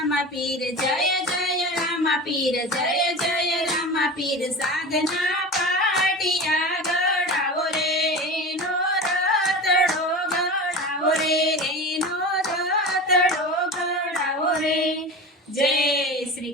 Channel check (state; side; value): normal; both; correlation 0.30